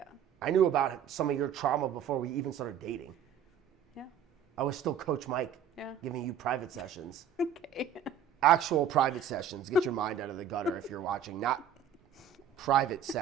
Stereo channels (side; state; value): left; quieter; 7.9 dB